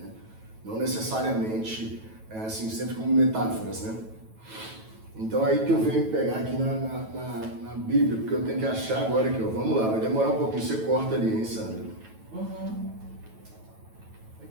Não necessariamente, assim, sempre como metáforas, né? Então aí que eu venho pegar aqui na Bíblia, porque eu tenho que achar agora aqui, ó. Vamos lá, vai demorar um pouquinho, você corta ali, hein, Sandra?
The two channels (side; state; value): left; late; 9.2 ms